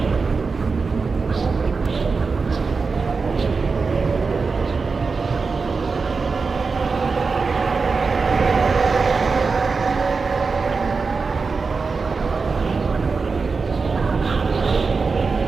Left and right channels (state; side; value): quieter; left; 4.6 dB